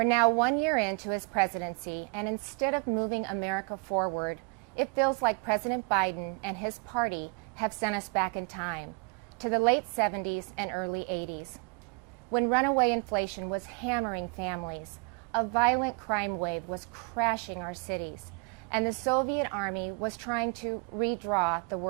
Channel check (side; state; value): left; quieter; 32.2 dB